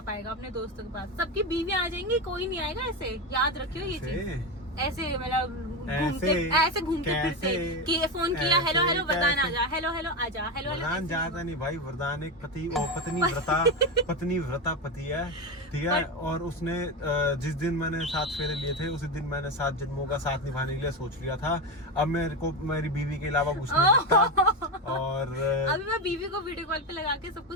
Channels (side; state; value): both; normal; correlation 0.16